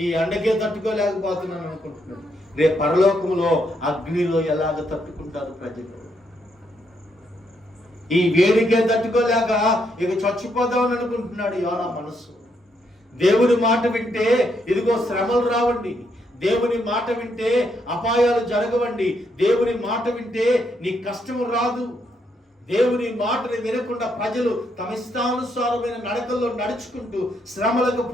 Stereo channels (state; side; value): normal; both; correlation 0.76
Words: ఈ ఎండకే తట్టుకోలేకపోతున్నాను అనుకుంటున్నాడు. రేపు పరలోకములో అగ్నిలో ఎలాగ తట్టుకుంటారు ప్రజలు? ఈ వేడికే తట్టుకోలేక ఇక చచ్చిపోదామని అనుకుంటున్నాడు యోనా మనస్సు. దేవుని మాట వింటే ఇదిగో శ్రమలు రావండి, దేవుని మాట వింటే అపాయాలు జరగవండి, దేవుని మాట వింటే నీ కష్టము రాదు. దేవుని మాటని వినకుండా ప్రజలు తమ ఇష్టానుసారమైన నడకల్లో నడుచుకుంటూ శ్రమలకు